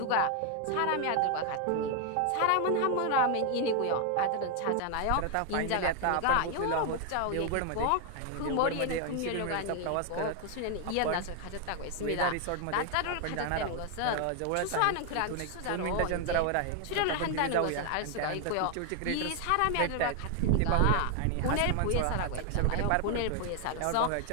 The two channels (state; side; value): different; both; correlation 0.00